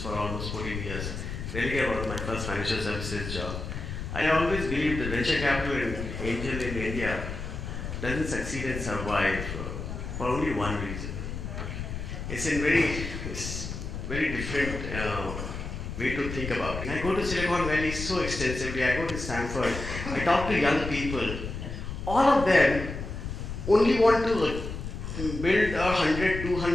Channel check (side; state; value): left; noise; rumble, 6 dB below the sound